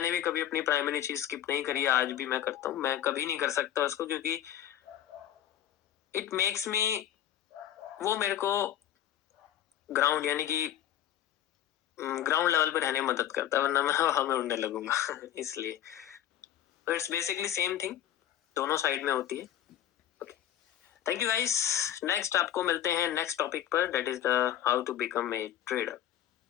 भी कभी अपनी प्राइमरी चीज स्किप नहीं करी है, आज भी मैं करता हूँ। मैं कभी नहीं कर सकता उसको, क्योंकि इट मेक्स मी, वो मेरे को ग्राउंड यानी कि ग्राउंड लेवल पे रहने में मदद करता है, वरना मैं हवा में उड़ने लगूंगा इसलिए इट्स बेसिकली सेम थिंग, दोनों साइड में होती है। Okay, thank you guys. Next आपको मिलते हैं नेक्स्ट टॉपिक पर, that is the how to become a trader.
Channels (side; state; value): right; quieter; 11.5 dB